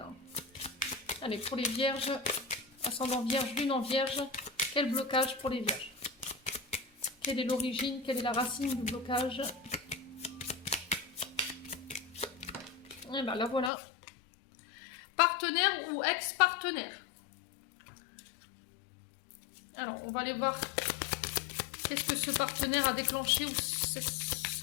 allez, pour les vierges, ascendant vierge, lune en vierge, quel blocage pour les vierges? Quelle est l'origine, quelle est la racine du blocage? Et bien là, voilà. Partenaire ou ex-partenaire? Alors, on va aller voir qu'est-ce que ce partenaire a déclenché ou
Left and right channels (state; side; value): drops out; right; at 13.7 s